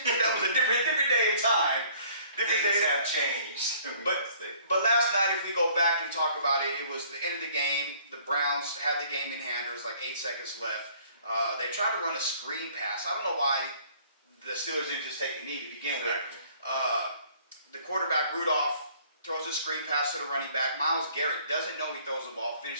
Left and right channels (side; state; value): both; inverted; correlation -0.57